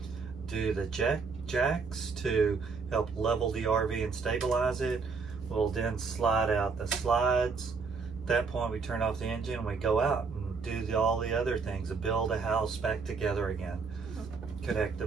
do the jacks to help level the RV and stabilize it. We'll then slide out the slides. At that point, we turn off the engine and we go out and do all the other things, to build a house back together again. Connect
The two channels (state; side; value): quieter; left; 4.9 dB